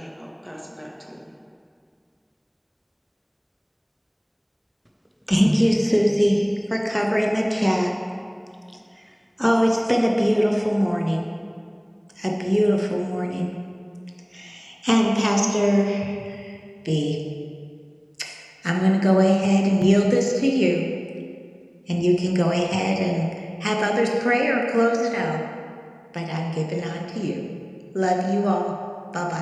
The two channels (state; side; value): identical; both; correlation 1.00